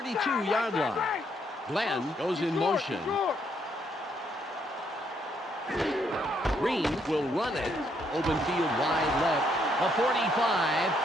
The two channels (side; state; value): both; normal; correlation 0.72